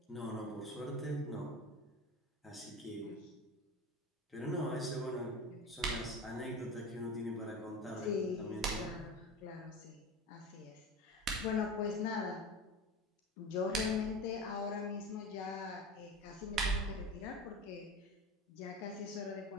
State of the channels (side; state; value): both; normal; correlation 0.30